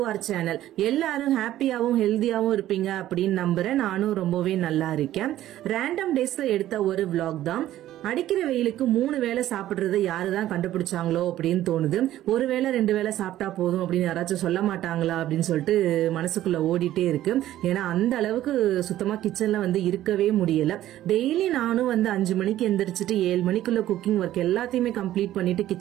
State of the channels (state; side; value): quieter; left; 13.5 dB